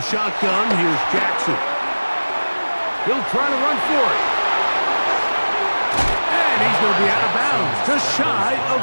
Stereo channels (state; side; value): inverted; both; correlation -1.00